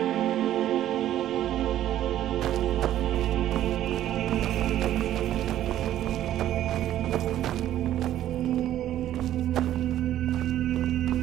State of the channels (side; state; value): left; quieter; 12.4 dB